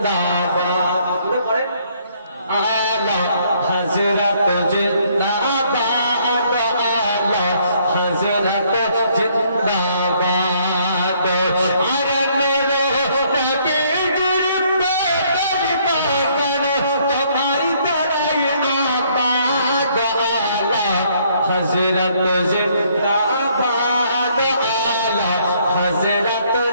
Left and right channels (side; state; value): both; inverted; correlation -0.66